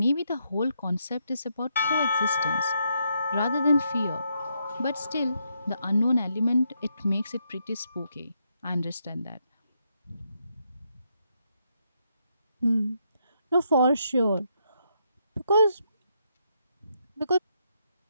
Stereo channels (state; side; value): inverted; both; correlation -0.78